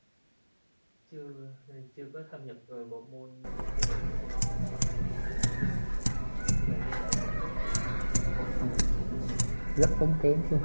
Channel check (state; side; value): inverted; both; correlation -1.00